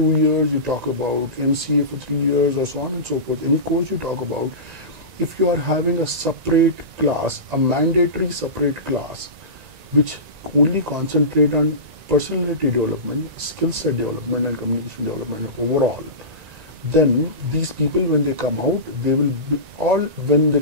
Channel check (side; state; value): left; late; 1.9 ms